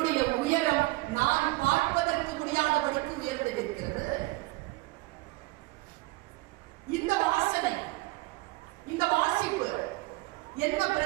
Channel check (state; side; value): quieter; left; 22.8 dB